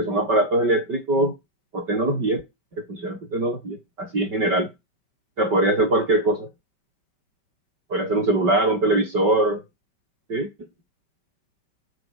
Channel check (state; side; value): late; left; 5.2 ms